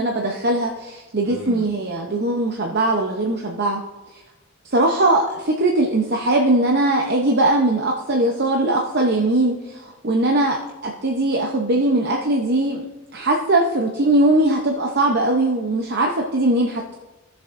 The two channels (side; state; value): both; normal; correlation 0.07